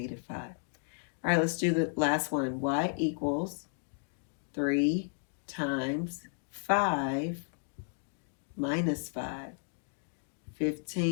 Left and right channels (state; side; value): silent; right; digital silence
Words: 5. All right, let's do the last one. Y equals 3 times 5 minus 5.